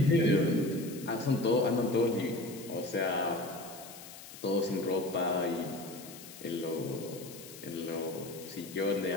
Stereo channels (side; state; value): left; noise; hiss, 15 dB below the sound